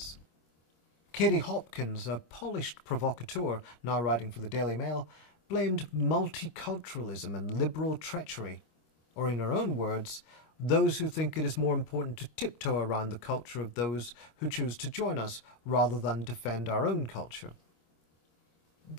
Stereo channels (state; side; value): late; right; 26 ms